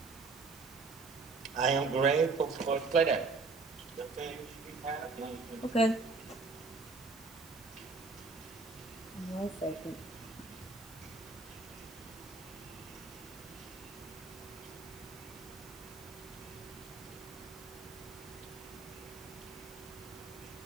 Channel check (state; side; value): quieter; left; 4.1 dB